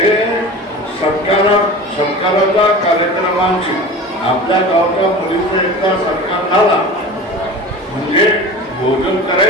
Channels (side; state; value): both; normal; correlation 0.35